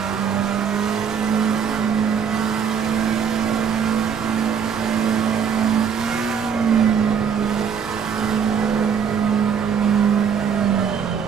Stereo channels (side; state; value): left; quieter; 7.1 dB